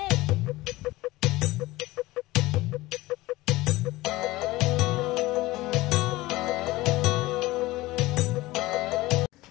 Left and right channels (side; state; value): right; quieter; 19.1 dB